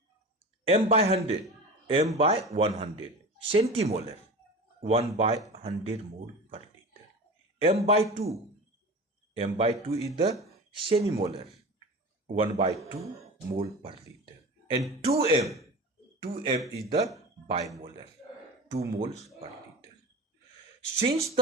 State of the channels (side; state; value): both; normal; correlation 0.31